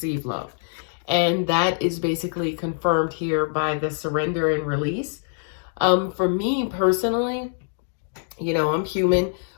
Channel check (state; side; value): silent; right; digital silence